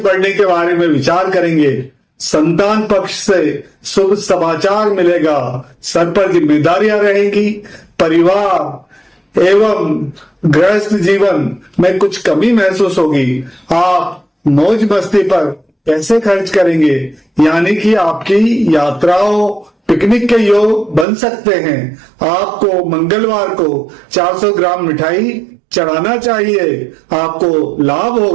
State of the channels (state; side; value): drops out; left; at 21.1 s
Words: बढ़ने के बारे में विचार करेंगे। संतान पक्ष से शुभ समाचार मिलेगा। सर पर जिम्मेदारियां रहेंगी। परिवार एवं गृहस्थ जीवन में कुछ कमी महसूस होगी। आप मौज मस्ती पर पैसे खर्च करेंगे, यानी कि आपकी यात्राओं पिकनिक के योग बन सकते हैं। आपको मंगलवार को 400 ग्राम मिठाई चढ़ाना चाहिए। आपको लाभ